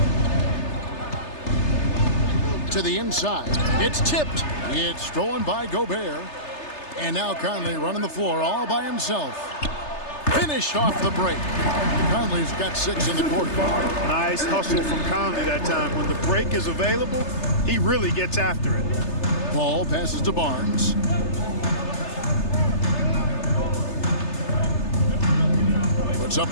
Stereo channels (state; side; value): late; right; 3.3 ms